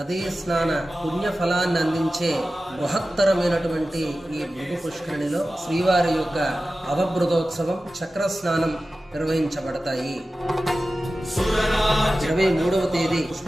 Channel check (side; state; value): both; normal; correlation 0.95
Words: స్నాన పుణ్యఫలాన్ని అందించే బృహత్తరమైనటువంటి ఈ భృగు పుష్కరిణిలో శ్రీవారి యొక్క అవబృతోత్సవం, చక్ర స్నానం నిర్వహించబడతాయి. 23వ తేదీ